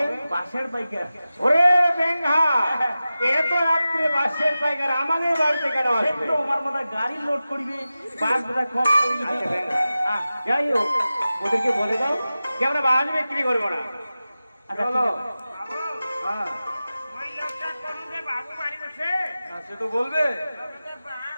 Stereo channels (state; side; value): inverted; both; correlation -0.94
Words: বাসের পাইকার। ওরে বেঙ্গা, এত রাত্রে বাসের পাইকার আমাদের বাড়িতে কেন আসবে? তো আমার মনে গাড়ি লোড করিবে, বাস বোধহয় কম করিবে। আচ্ছা বেঙ্গা, যাই হোক, ওদেরকে বলে দাও যে আমরা বাস বিক্রি করবো না। আচ্ছা চলো। ঠিক আছে। হ্যাঁ বাবু বাড়ি যাচ্ছে। সে তো বলবে।